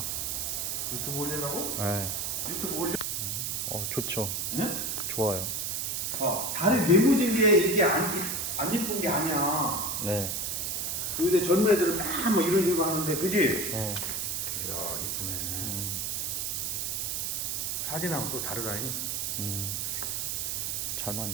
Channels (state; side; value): noise; right; hiss, 1 dB below the sound